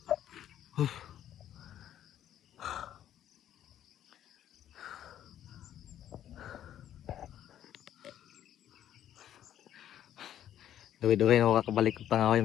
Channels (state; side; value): quieter; right; 11.1 dB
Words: Duwi-duwi na ako kakabalik ng